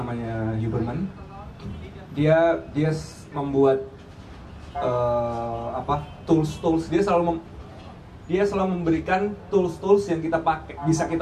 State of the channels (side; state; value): both; identical; correlation 1.00